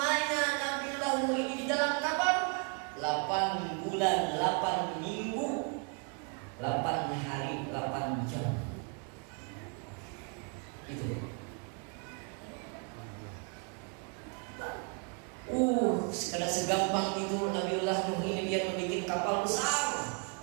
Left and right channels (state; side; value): quieter; left; 38.6 dB